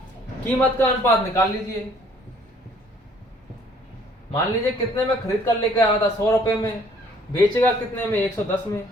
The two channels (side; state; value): both; normal; correlation 0.59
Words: कीमत का अनुपात निकाल लीजिए। मान लीजिए कितने में खरीद कर लेकर आया था, 100 रुपए में, बेचेगा कितने में, 110 में।